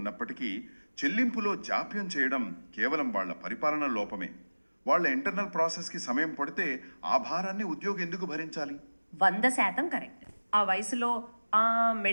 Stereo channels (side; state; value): both; inverted; correlation -1.00